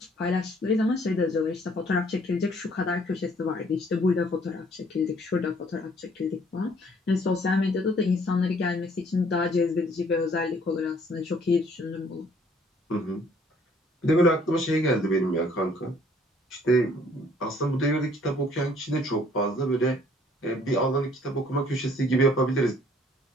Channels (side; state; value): both; normal; correlation 0.60